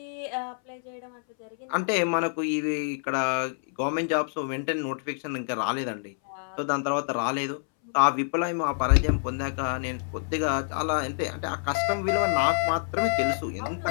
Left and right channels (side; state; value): right; silent; 60 dB below the other